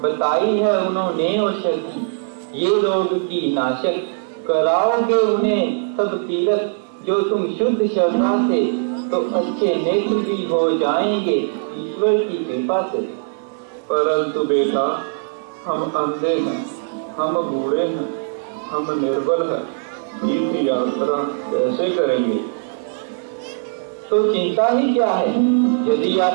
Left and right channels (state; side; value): silent; left; digital silence